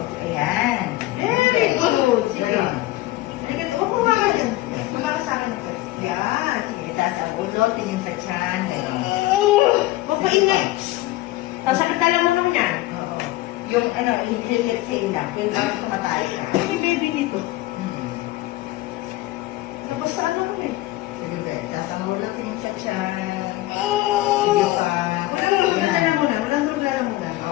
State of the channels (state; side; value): quieter; right; 17.6 dB